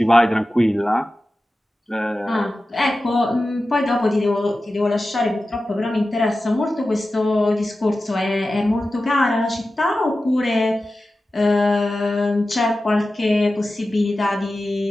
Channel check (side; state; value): both; normal; correlation 0.94